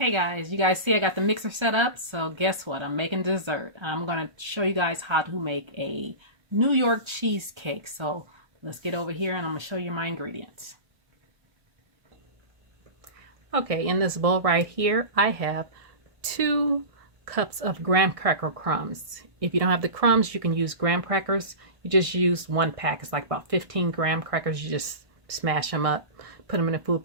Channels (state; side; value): late; left; 1.6 ms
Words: guys, you guys see I got the mixer set up, so guess what? I'm making dessert. I'm going to show you guys how to make a New York cheesecake. So let's get over here and I'm going to show you my ingredients. Okay, in this bowl right here, I have 2 cups of graham cracker crumbs. If you don't have the crumbs, you can use graham crackers. You just use 1 pack. It's like about 15 graham crackers. You just smash them up, put them in a food